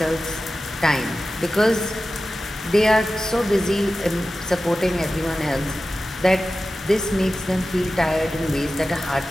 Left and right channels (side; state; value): both; normal; correlation 0.94